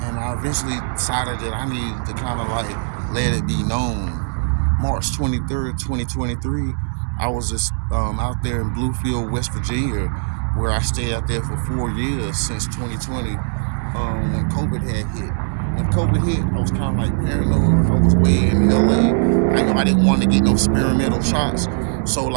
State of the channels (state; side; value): silent; left; 66 dB below the other